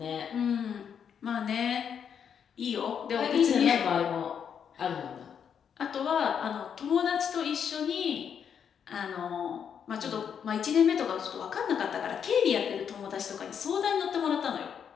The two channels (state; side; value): quieter; right; 7.7 dB